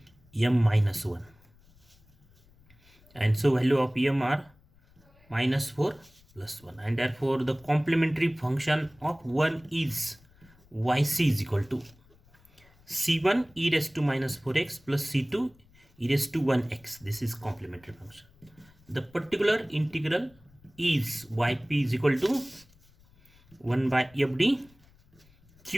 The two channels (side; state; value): left; noise; rumble, 29 dB below the sound